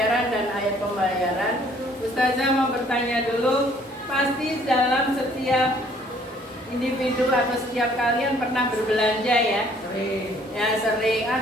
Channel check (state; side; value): normal; both; correlation 0.60